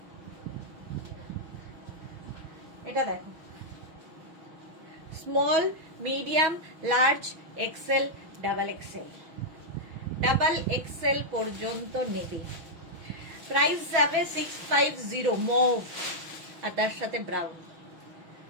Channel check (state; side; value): late; left; 6.2 ms